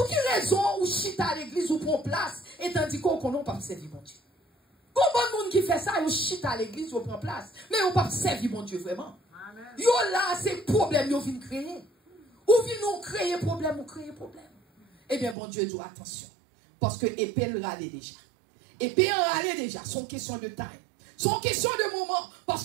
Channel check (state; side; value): drops out; left; at 15.4 s